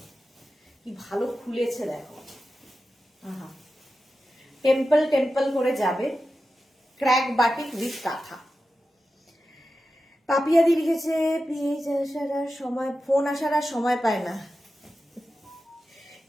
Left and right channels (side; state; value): both; normal; correlation 0.92